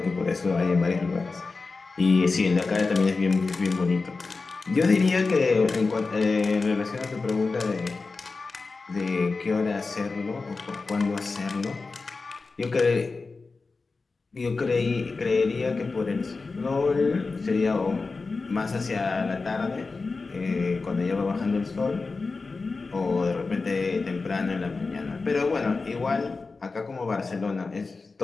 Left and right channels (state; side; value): quieter; right; 4.0 dB